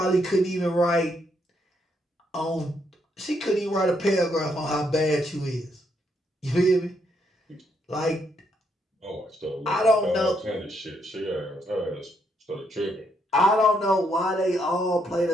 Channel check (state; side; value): normal; both; correlation 0.75